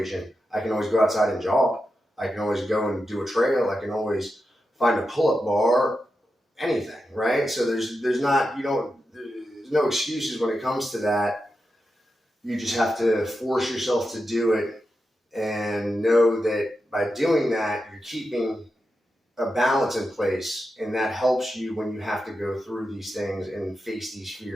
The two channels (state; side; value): normal; both; correlation 0.89